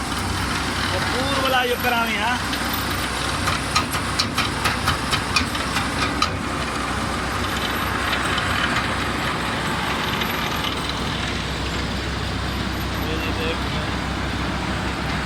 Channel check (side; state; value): both; identical; correlation 1.00